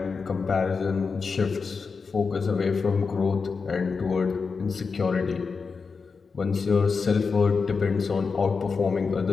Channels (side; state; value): right; quieter; 5.0 dB